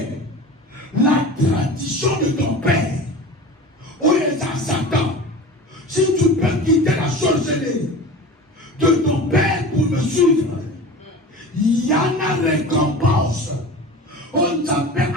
la tradition de ton père, où est Satan, si tu peux quitter la sorcellerie de ton père pour me suivre, il y a une récompense. On t'appelle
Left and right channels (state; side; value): normal; both; correlation 0.35